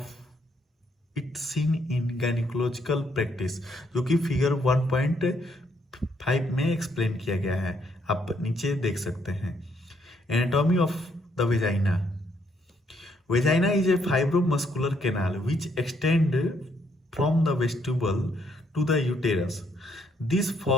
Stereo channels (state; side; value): normal; both; correlation 0.71